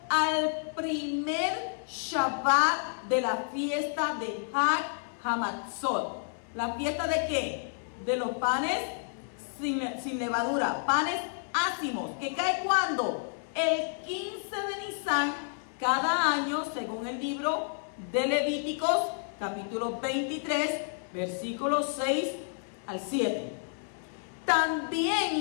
al primer Shabbat de la fiesta de Hag Hamatzot. ¿La fiesta de qué? De los panes sin levadura, panes ácimos, que cae ¿cuándo? El 15 de Nisan, cada año, según el libro de Levíticos, capítulo 23, versículos 6 al 7. También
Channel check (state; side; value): silent; right; 58 dB below the other